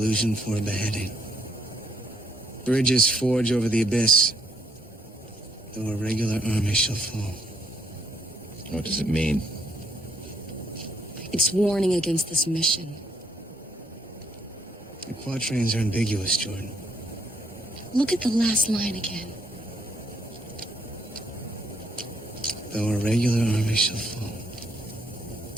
for a beheading. Bridges forge over the abyss, though a regular army shall fall. What does it mean? It's warning against this mission. The quatrains are ambiguous, Jordan. Look at the last line again. Though a regular army shall fall.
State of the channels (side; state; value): both; normal; correlation 0.71